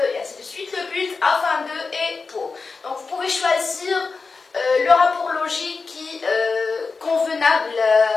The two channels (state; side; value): quieter; right; 4.4 dB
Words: et ainsi de suite, le but, afin de, et pour. Donc, vous pouvez choisir le rapport logique qui